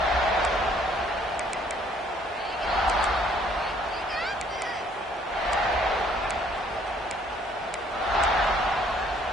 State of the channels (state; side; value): normal; both; correlation 0.62